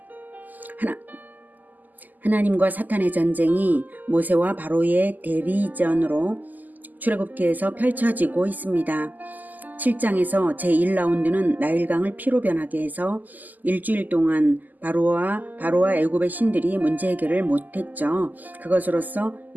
하나님과 사탄의 전쟁이 모세와 바로의 대리전으로 출애굽기에서 펼쳐지고 있습니다. 7장에서 제1라운드는 나일강을 피로 변하게 해서 일주일 동안 바로와 애굽의 신들이 문제 해결을 못했죠. 그것으로서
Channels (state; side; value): late; left; 0.083 ms